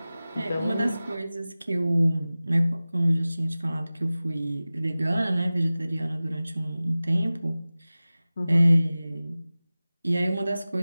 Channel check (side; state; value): both; inverted; correlation -0.97